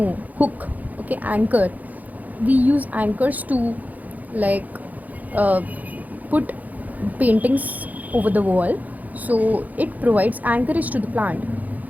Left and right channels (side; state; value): left; late; 0.080 ms